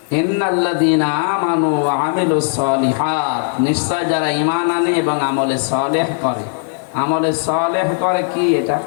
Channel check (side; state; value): right; silent; digital silence